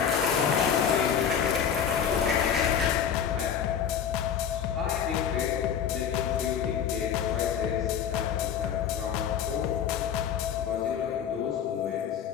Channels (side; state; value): right; quieter; 8.2 dB